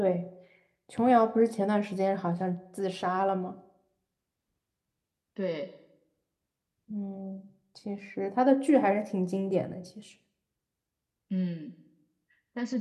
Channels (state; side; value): identical; both; correlation 1.00